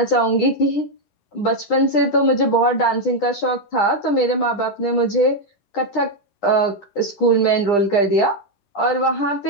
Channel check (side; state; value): right; late; 9.9 ms